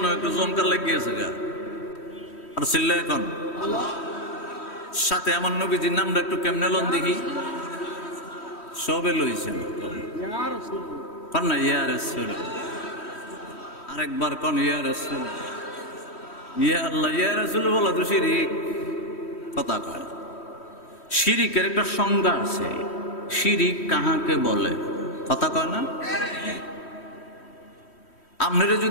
হয় একটু জমকার লাগিয়েছে গা। আর চিল্লা এখন সাথে আমার নবীজির নামটা একটু কেমনে লন দেখি। সবে লইছেন কন না, ইয়া রাসূল। আরেকবার কন, ইয়া রাসূল। ইয়া আল্লাহ, ইয়া রাসূল বলা তো শিরিক। কথা কয়, শিরিকের একটা সংজ্ঞা আছে। শিরিক কাহাকে বলে? কথা কয় না? আপনারা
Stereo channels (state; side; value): late; right; 3.1 ms